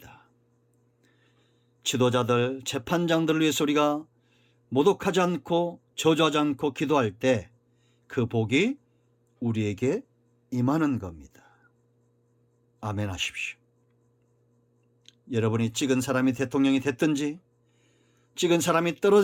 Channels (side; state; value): both; identical; correlation 1.00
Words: 지도자들, 재판장들을 위해서 우리가 모독하지 않고 저주하지 않고 기도할 때 그 복이 우리에게 임하는 겁니다. 아멘 하십시오. 여러분이 찍은 사람이 대통령이 됐든지 찍은 사람이